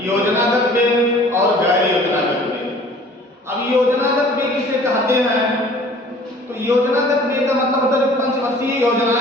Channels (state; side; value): normal; both; correlation 0.50